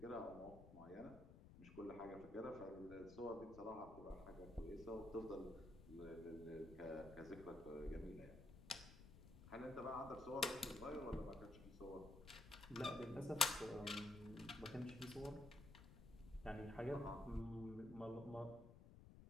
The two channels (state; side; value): noise; left; rumble, 15 dB below the sound